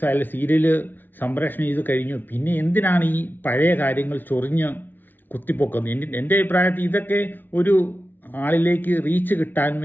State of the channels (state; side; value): late; right; 0.090 ms